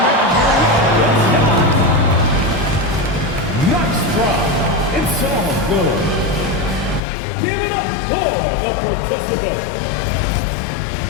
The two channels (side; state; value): right; drops out; at 7.0 s